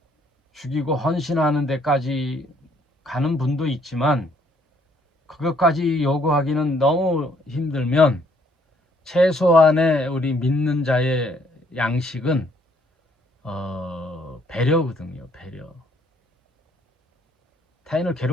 죽이고 헌신하는 데까지 가는 분도 있지만 그것까지 요구하기는 너무 힘들면 최소한의 우리 믿는 자의 양식은 배려거든요. 배려. 타인을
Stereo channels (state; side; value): normal; both; correlation 0.66